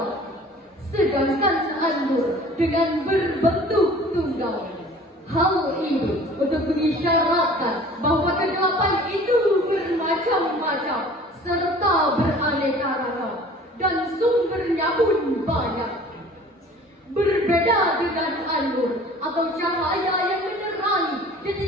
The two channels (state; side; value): normal; both; correlation 0.47